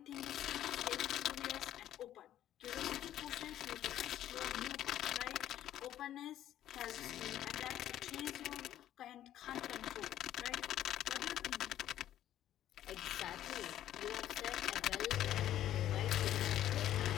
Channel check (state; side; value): quieter; right; 12.1 dB